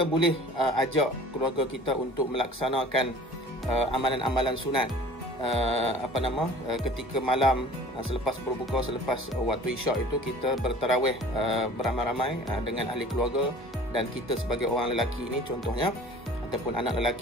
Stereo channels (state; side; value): normal; both; correlation 0.45